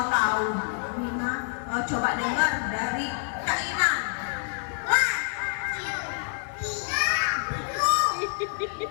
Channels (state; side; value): silent; right; 60 dB below the other